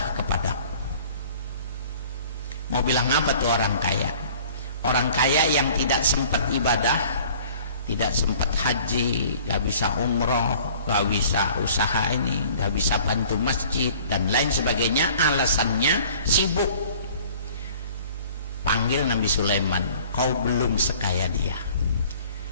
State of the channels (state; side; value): inverted; both; correlation -0.50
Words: kepadaku. Mau bilang apa tuh orang kaya? Orang kaya yang tidak sempat ibadah, tidak sempat haji, gak bisa umroh, gak bisa usaha ini, gak bisa bantu masjid dan lain sebagainya, alasannya sibuk. Panggil Nabi Sulaiman, kau belum sekaya dia,